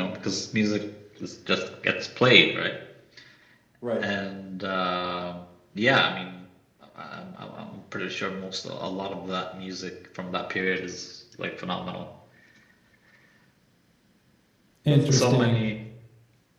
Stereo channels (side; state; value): both; identical; correlation 1.00